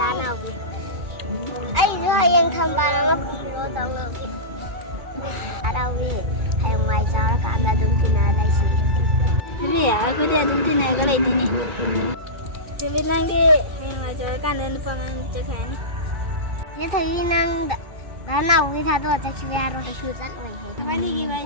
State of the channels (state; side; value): late; left; 2.4 ms